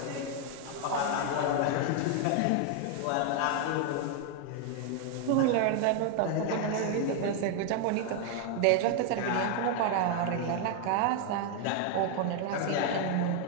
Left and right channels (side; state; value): both; different; correlation 0.01